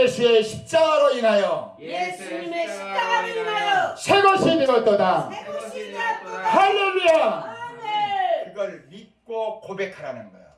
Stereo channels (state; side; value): identical; both; correlation 1.00